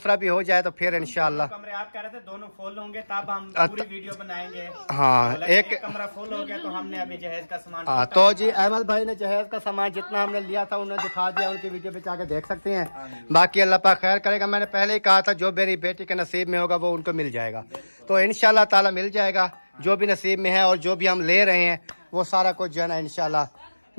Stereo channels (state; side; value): inverted; both; correlation -1.00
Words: भी हो जाए तो फिर इंशाल्लाह। कमरे आप कह रहे थे दोनों फुल होंगे तब हम पूरी वीडियो बनाएंगे। हाँ एक कमरा फुल हो गया तो हमने अभी जहेज का सामान। हाँ तो जी अहमद भाई ने जहेज का सामान जितना हमने लिया था उन्होंने दिखा दिया, उनकी वीडियो पे जाके देख सकते हैं। बाकी अल्लाह पाक खैर करेगा। मैंने पहले ही कहा था जो मेरी बेटी के नसीब में होगा वो उनको मिल जाएगा, तो इंशाल्लाह ताला मिल जाएगा जो भी नसीब में है। और जो भी हम ले रहे हैं वो सारा कुछ जो है ना इंशाल्लाह